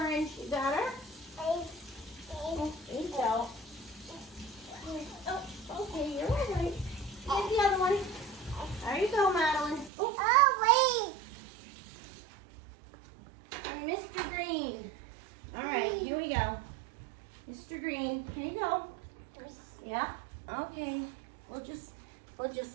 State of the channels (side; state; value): left; drops out; at 9.9 s